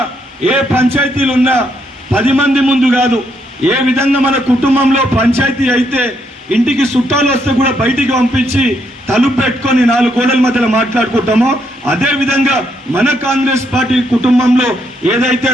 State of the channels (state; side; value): normal; both; correlation 0.75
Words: ఏ పంచాయతీలున్నా 10 మంది ముందు కాదు, ఏ విధంగా మన కుటుంబంలో పంచాయతీ అయితే ఇంటికి చుట్టాలు వస్తే కూడా బయటికి పంపించి తలుపు పెట్టుకొని 4 గోడల మధ్యలో మాట్లాడుకుంటామో, అదే విధంగా మన కాంగ్రెస్ పార్టీ కుటుంబంలో ఏదైతే